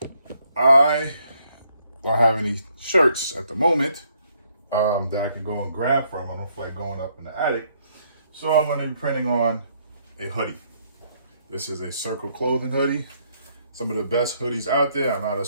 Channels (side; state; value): both; inverted; correlation -0.70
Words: I don't have any shirts at the moment that I can go and grab from. I don't feel like going up in the attic. So I'm gonna be printing on a hoodie. This is a Circle Clothing hoodie. Some of the best hoodies out there. I'm not a